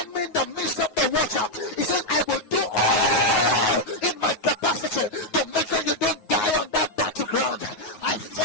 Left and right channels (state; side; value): late; right; 9.5 ms